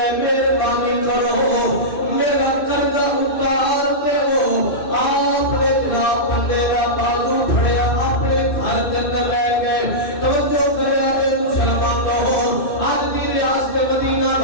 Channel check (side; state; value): right; late; 2.6 ms